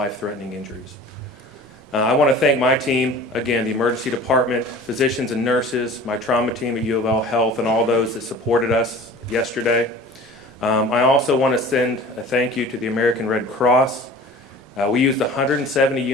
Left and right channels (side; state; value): both; normal; correlation 0.42